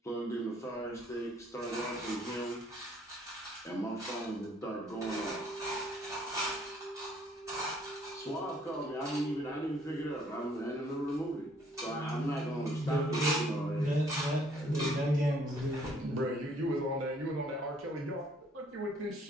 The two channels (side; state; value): both; normal; correlation 0.63